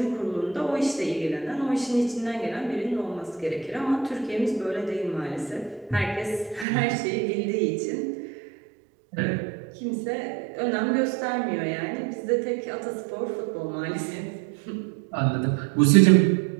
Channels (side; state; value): left; drops out; at 6.7 s